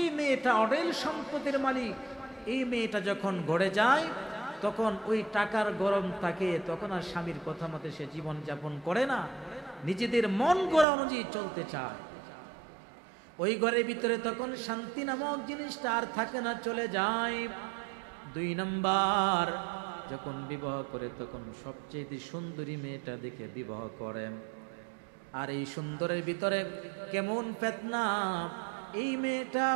মেয়েটা অঢেল সম্পদের মালিক, এই মেয়েটা যখন ঘরে যায় তখন ওই টাকার গরম থাকে, তখন আর স্বামীর কথা মতে সে জীবন যাপন করে না, নিজেদের মন গড়া অনুযায়ী চলতে চায়। ওই ঘরের ভিতরে তখন শান্তি নামক জিনিসটা আর থাকে না, চলে যায়। 2 নম্বর যখন বিবাহ করে তখন সবচেয়ে সুন্দরী মেয়েটা দেখে বিবাহ করেন। আর এই সুন্দরের ভিতরে কেমন ফিতনা, এই মেয়েটা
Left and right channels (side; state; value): left; drops out; at 10.9 s